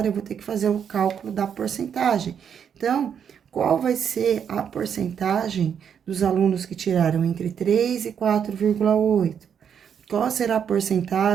eu vou ter que fazer o cálculo da porcentagem. Então, qual vai ser a porcentagem dos alunos que tiraram entre 3 e 4,8? qual será a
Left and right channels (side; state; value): left; quieter; 7.9 dB